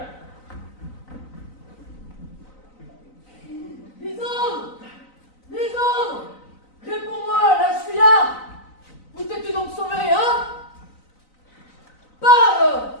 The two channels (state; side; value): late; right; 3.9 ms